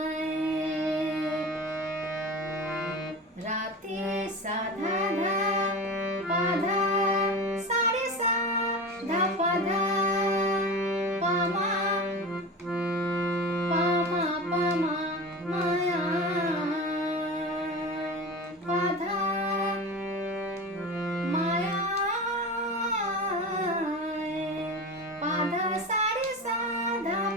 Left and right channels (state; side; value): normal; both; correlation 0.29